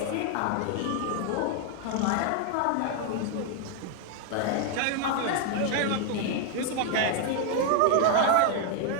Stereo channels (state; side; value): different; both; correlation 0.01